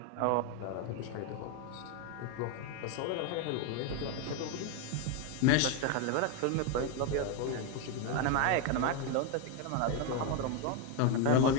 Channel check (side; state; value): both; different; correlation 0.01